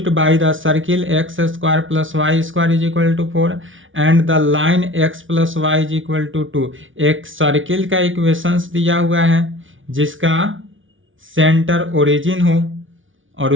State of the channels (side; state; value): left; late; 0.57 ms